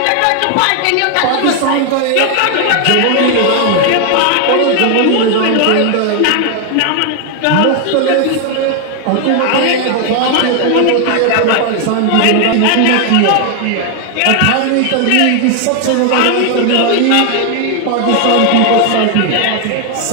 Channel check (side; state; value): both; different; correlation 0.00